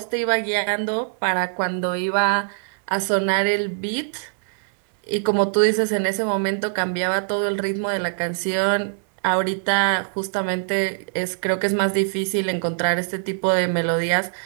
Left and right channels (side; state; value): left; silent; digital silence